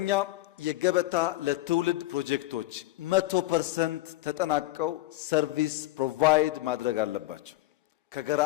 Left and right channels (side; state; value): right; quieter; 17.8 dB